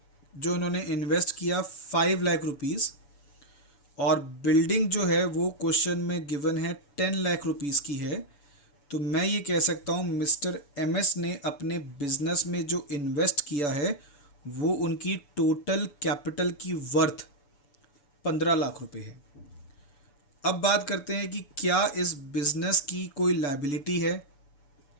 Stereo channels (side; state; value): right; late; 7.0 ms